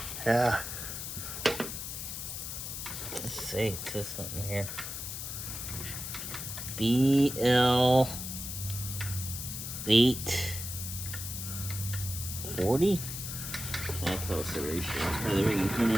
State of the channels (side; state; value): left; noise; hiss, 6 dB below the sound